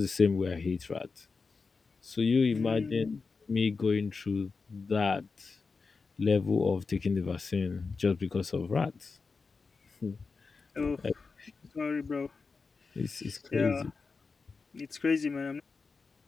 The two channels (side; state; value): right; quieter; 4.6 dB